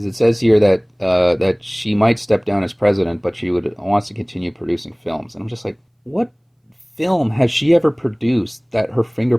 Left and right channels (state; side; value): identical; both; correlation 1.00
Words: it says here that she might step down as president, but she wants to continue producing films. And I'm just like, what film has she ever produced that her